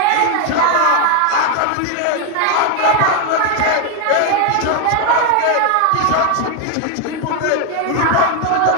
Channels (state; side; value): different; both; correlation 0.01